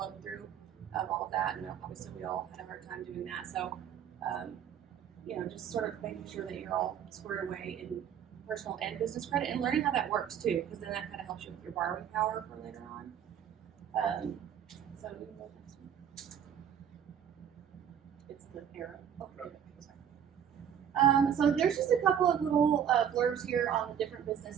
through all of that. And obviously we all had a hard time doing that. So, just sort of making sure that you're all squared away in personal and business credit, and learning how that works too, because then that kind of helps you with your borrowing power for later on. So we can go next one. It's the arrow. Oh, okay, sorry. So there's just a couple of little blurbs here on the different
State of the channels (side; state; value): left; quieter; 8.8 dB